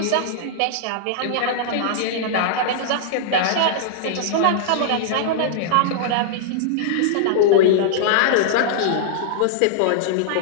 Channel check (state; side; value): different; both; correlation -0.02